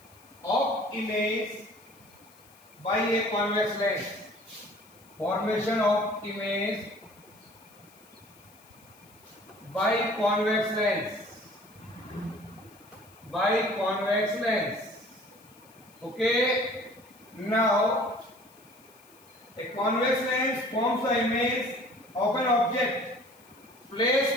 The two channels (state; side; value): noise; left; hiss, 27 dB below the sound